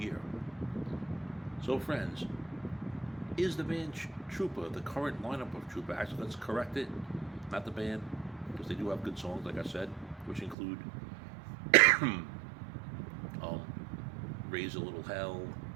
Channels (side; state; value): left; drops out; at 10.6 s